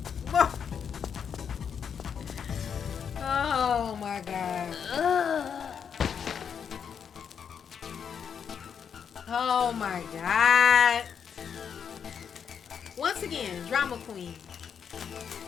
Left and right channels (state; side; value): quieter; right; 7.3 dB